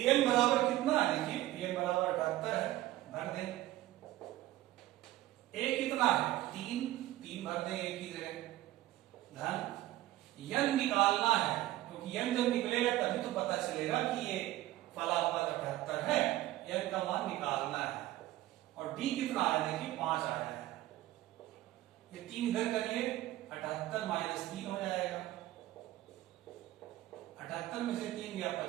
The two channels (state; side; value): quieter; left; 15.7 dB